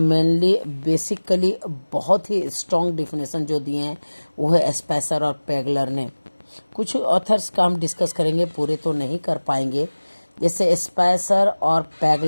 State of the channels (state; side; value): inverted; both; correlation -1.00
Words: बेसिकली बहुत ही स्ट्रॉन्ग डिफिनेशन जो दिए हैं वो है स्पेसर और पेगलर ने। कुछ ऑथर्स का हम डिस्कस करेंगे, पूरे तो नहीं कर पाएंगे। जैसे स्पेसर और